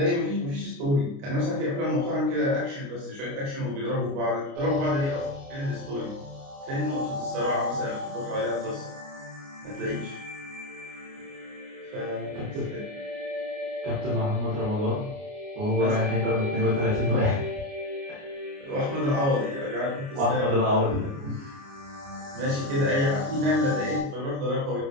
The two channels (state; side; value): late; left; 29 ms